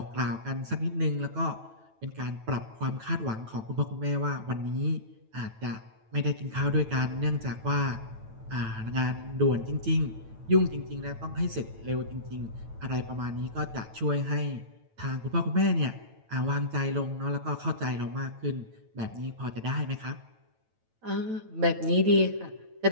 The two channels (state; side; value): late; left; 9.1 ms